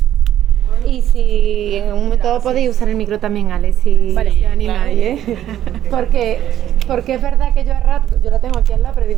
Y si en un momento podéis usar el micro también, Ale, si animáis, Porque es verdad que yo a rato, yo la tengo aquí al lado, pero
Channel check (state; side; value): quieter; left; 11.6 dB